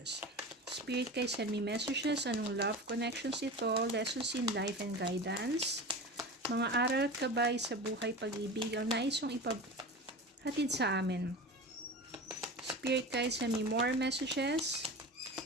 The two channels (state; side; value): normal; both; correlation 0.31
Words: Spirit guys, send me messages. Anong love connections ito? Lessons in life and guidance. Mga aral at gabay sa buhay pag-ibig. Ang nais yung ipaghatid sa amin. Spirit guys, send me more messages.